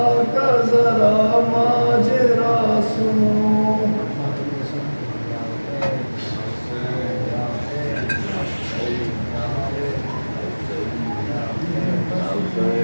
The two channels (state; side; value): inverted; both; correlation -1.00